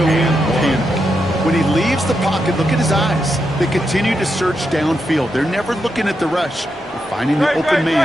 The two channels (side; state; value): both; normal; correlation 0.84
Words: panic. When he leaves the pocket, look at his eyes. They continue to search downfield. They're never looking at the rush. They're finding the open